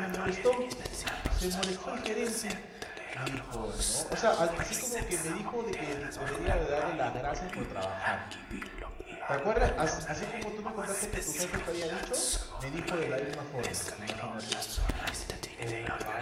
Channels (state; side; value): identical; both; correlation 1.00